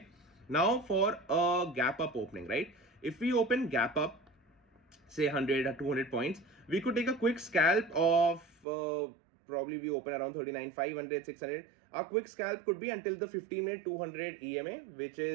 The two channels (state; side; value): drops out; left; at 8.7 s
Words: Now for a gap up opening, right? If we open gap up, say 100 or 200 points, we could take a quick scalp of probably we open around 39,500, 600. Our quick scalp could be until the 15-minute 200 EMA, which